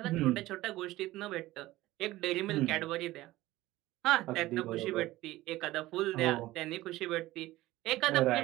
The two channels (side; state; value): left; quieter; 17.3 dB